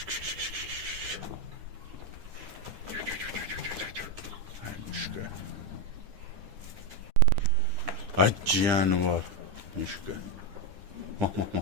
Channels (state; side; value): late; left; 9.9 ms